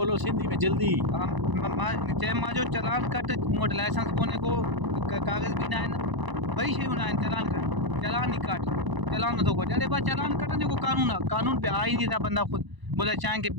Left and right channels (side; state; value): left; late; 1.0 ms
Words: सिंधी में जल्दी। मां जो चालान कट मोट लाइसेंस कोने को कागज़ भी ना है ना, वही शयूं ना चालान काट, चालान नहीं काट, चालान तो को जल्दी बात चालान कटने को कानून है, कानून पे आ ही नहीं था। बंदा खुद बोला चाय के